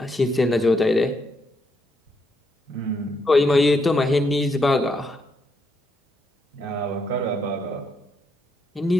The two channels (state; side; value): normal; both; correlation 0.77